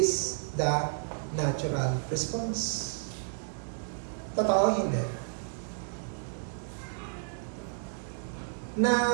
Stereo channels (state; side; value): silent; left; digital silence